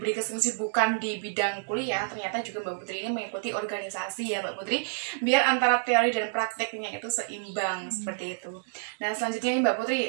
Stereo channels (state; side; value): silent; left; digital silence